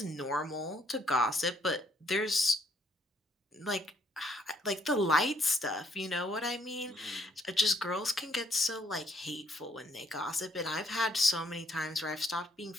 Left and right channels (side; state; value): both; normal; correlation 0.68